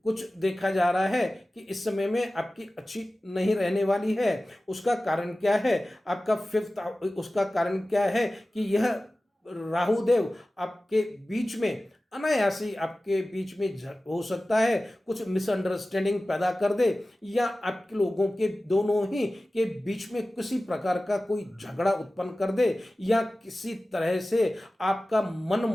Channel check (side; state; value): both; normal; correlation 0.96